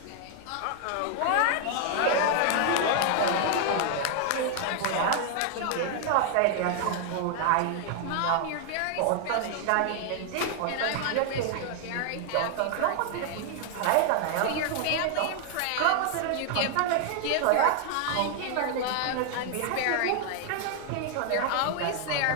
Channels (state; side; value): different; both; correlation 0.00